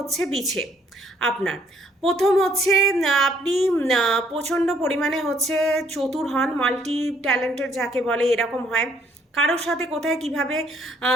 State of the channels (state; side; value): normal; both; correlation 0.66